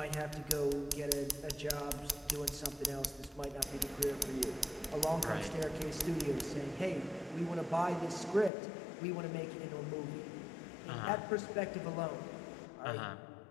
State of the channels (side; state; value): right; drops out; at 8.5 s